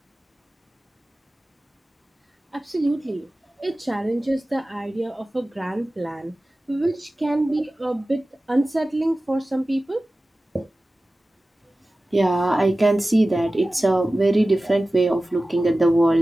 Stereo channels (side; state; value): both; normal; correlation 0.96